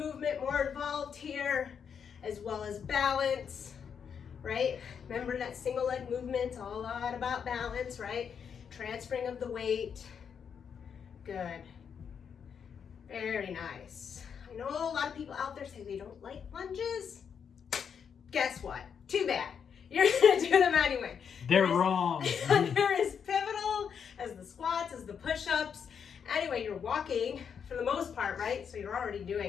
more involved here, as well as balance, right? Remember that single leg movement's all a lot about balance, right? Transferring of the weight. Good. Very nice. I know a lot of people out there say they don't like lunges. Guess what? Too bad. You're gonna do them anyway. They're wrong. They're as pivotal as the squats, as the push-ups. Anyway, you're walking for the most part, right? So you're already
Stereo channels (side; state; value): right; quieter; 7.2 dB